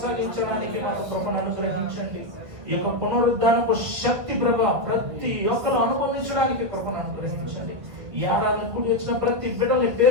మాకు కృపను అనుగ్రహించండి. ఈ యొక్క పునరుద్ధానపు శక్తి ప్రభ ప్రతి ఒక్కరు అనుభవించడానికి కృపను అనుగ్రహించండి. ఈ ఏడాది కూడి వచ్చిన ప్రతి బిడ్డల్ని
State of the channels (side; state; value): left; late; 1.9 ms